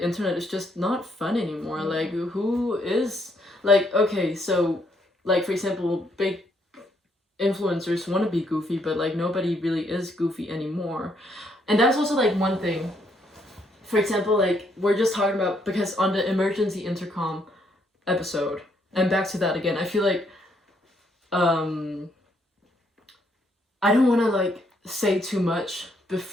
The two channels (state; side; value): normal; both; correlation 0.72